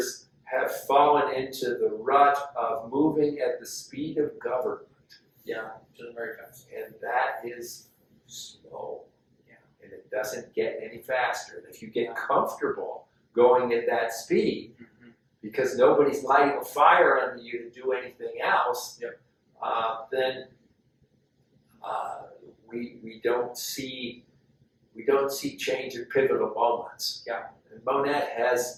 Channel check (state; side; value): identical; both; correlation 1.00